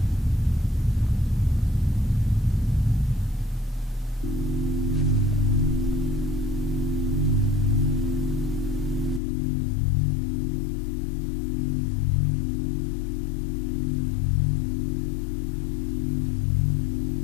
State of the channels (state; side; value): drops out; right; at 9.2 s